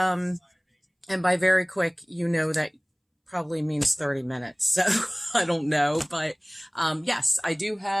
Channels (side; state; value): both; identical; correlation 1.00